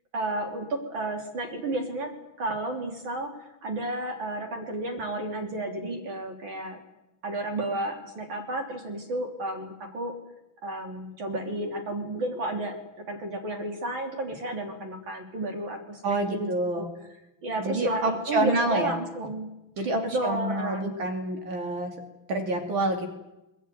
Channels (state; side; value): late; left; 6.0 ms